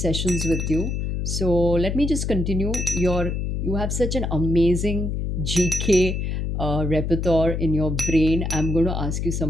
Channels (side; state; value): left; noise; hum, 1 dB below the sound